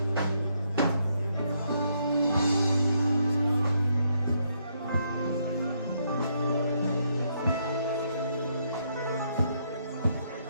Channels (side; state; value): both; inverted; correlation -0.75